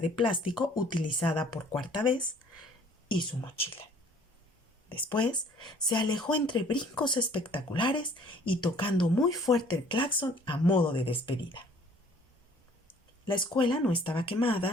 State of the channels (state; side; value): normal; both; correlation 0.55